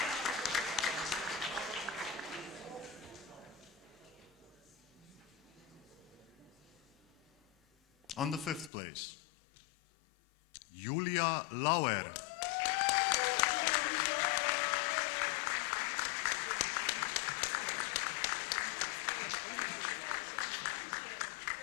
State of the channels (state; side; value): drops out; right; at 8.7 s